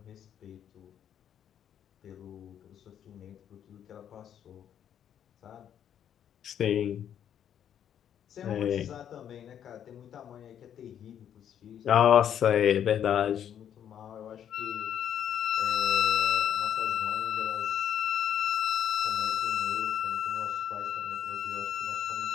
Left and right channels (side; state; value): right; quieter; 9.5 dB